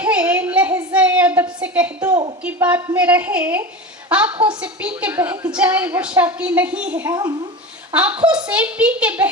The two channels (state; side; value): normal; both; correlation 0.27